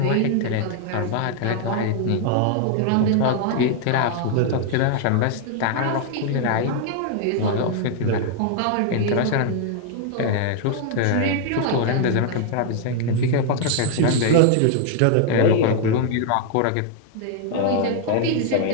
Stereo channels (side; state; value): both; different; correlation 0.00